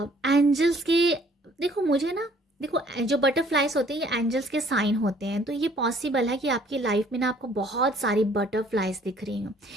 के, देखो मुझे ना देखो जो बटरफ्लाइज होते हैं ये एंजल्स के साइन होते हैं, तो ये पॉसिबल है कि आपकी लाइफ में ना आपको बहुत सारी बटरफ्लाइज दिख रही हो।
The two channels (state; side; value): normal; both; correlation 0.59